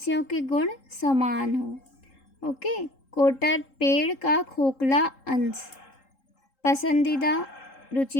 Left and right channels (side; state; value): right; late; 3.7 ms